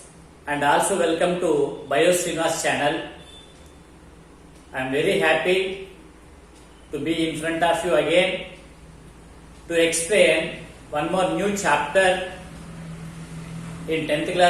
and also welcome to Srinivas channel. I am very happy to be in front of you again to explain one more new chapter in 10th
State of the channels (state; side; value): identical; both; correlation 1.00